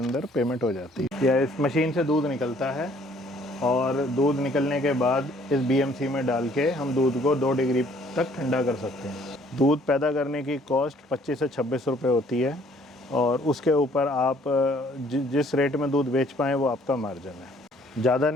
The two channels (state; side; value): normal; both; correlation 0.60